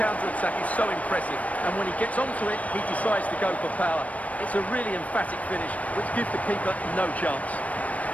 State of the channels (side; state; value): right; late; 0.068 ms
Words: counter-attack is so impressive, and when he gets onto it, he decides to go for power. It's a really emphatic finish, which gives the keeper no chance.